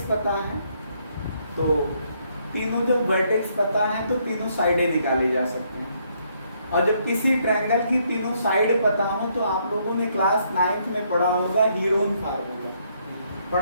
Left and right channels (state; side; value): inverted; both; correlation -0.71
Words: पता है तो तीनों जब वर्टेक्स पता है तो तीनों साइडें निकाली जा सकती हैं। और जब किसी ट्रायंगल की तीनों साइड पता हो तो आप लोगों ने क्लास 9th में पढ़ा होगा हीरोन फार्मूला,